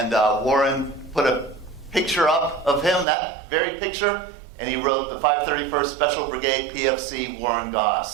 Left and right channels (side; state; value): left; drops out; at 3.1 s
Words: Warren put a picture up of him, that very picture, and he wrote the 531st Special Brigade PFC Warren